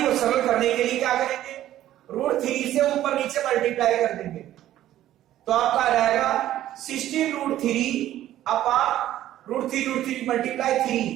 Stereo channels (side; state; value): left; quieter; 13.1 dB